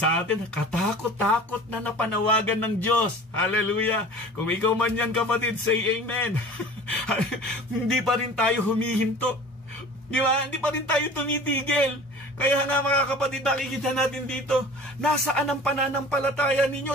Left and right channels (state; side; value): normal; both; correlation 0.42